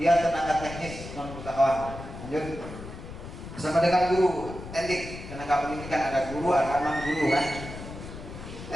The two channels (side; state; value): left; noise; rumble, 12 dB below the sound